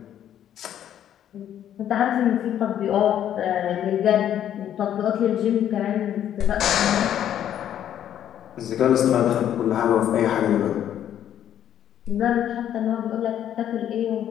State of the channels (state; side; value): quieter; right; 10.5 dB